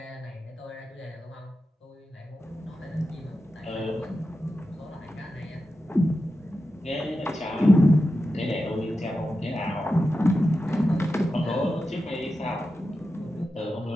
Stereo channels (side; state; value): both; normal; correlation 0.91